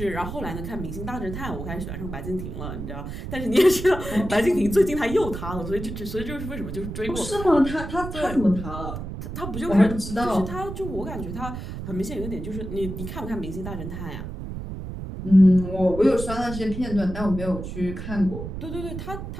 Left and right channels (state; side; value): noise; right; rumble, 7 dB below the sound